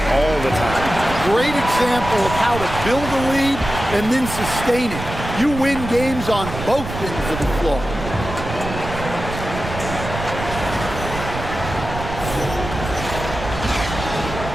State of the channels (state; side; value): noise; right; rumble, 8 dB below the sound